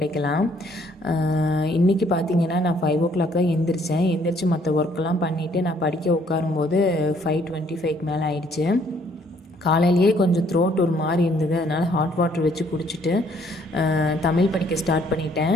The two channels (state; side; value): normal; both; correlation 0.65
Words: இன்றைக்கி பார்த்திங்கன்னா நான் 5 o'clock தான் எந்திரிச்சு மற்ற ஒர்க்கெல்லாம் பண்ணிவிட்டு நான் படிக்க உட்காரும்போது 5:25 மேலே ஆயிடுச்சு. காலையிலேயே கொஞ்சம் த்ரோட் ஒரு மாதிரி இருந்தது, அதனால் ஹாட் வாட்டர் வச்சு குடிச்சிட்டு தமிழ் படிக்க ஸ்டார்ட் பண்ணிட்டேன்.